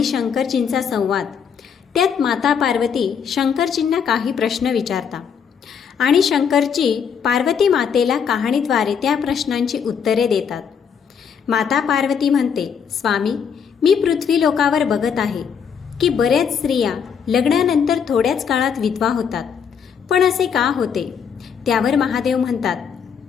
शंकरजींचा संवाद. त्यात माता पार्वती शंकरजींना काही प्रश्न विचारता आणि शंकरजी पार्वती मातेला कहाणीद्वारे त्या प्रश्नांची उत्तरे देतात. माता पार्वती म्हणते, स्वामी, मी पृथ्वी लोकावर बघत आहे की बऱ्याच स्त्रिया लग्नानंतर थोड्याच काळात विधवा होतात. पण असे का होते? त्यावर महादेव म्हणतात,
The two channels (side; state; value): right; quieter; 7.0 dB